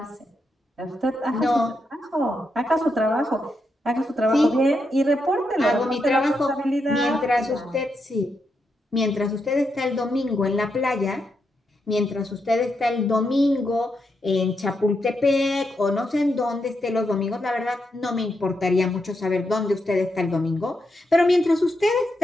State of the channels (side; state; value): both; normal; correlation 0.83